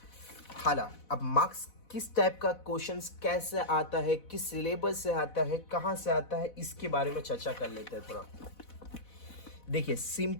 हालांकि अब मार्क्स किस टाइप का क्वेश्चंस कैसे आता है, किस सिलेबस से आता है, कहाँ से आता है, इसके बारे में चर्चा कर लेते हैं थोड़ा। देखिए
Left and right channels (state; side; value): late; right; 4.1 ms